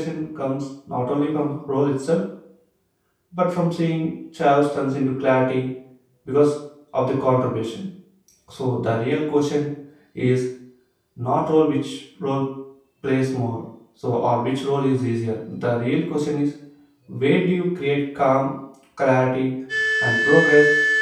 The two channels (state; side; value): identical; both; correlation 1.00